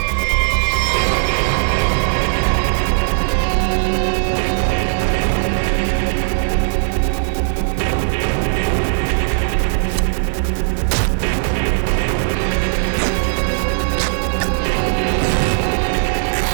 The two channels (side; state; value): left; silent; 68 dB below the other